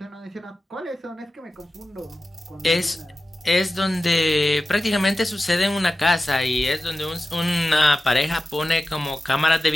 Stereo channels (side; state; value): both; normal; correlation 0.94